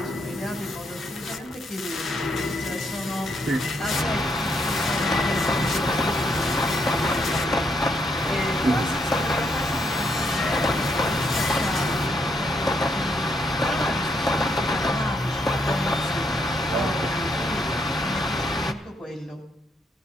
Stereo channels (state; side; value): normal; both; correlation 0.75